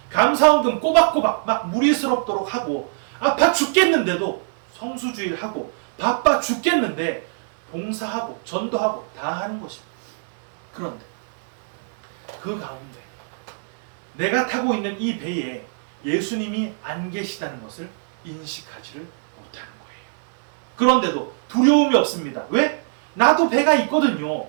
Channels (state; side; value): silent; left; 64 dB below the other